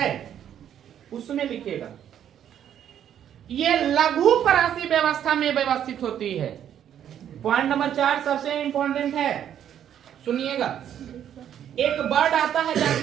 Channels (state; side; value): quieter; left; 9.9 dB